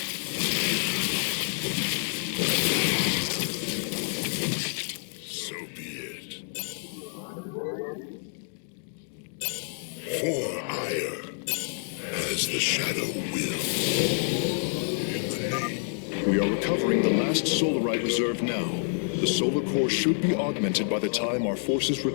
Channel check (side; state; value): right; silent; 55 dB below the other